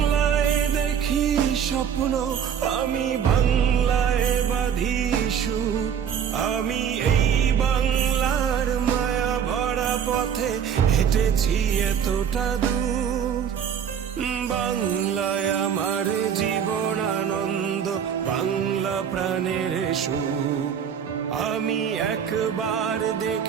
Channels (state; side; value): quieter; left; 8.1 dB